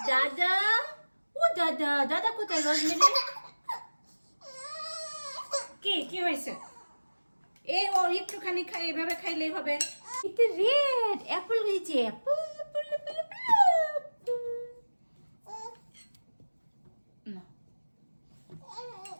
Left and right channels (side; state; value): both; inverted; correlation -1.00